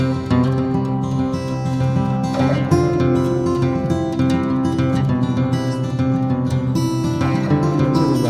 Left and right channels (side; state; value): both; identical; correlation 1.00